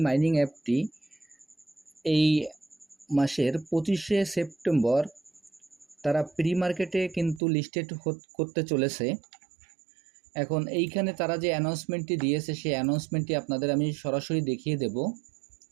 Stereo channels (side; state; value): left; drops out; at 7.4 s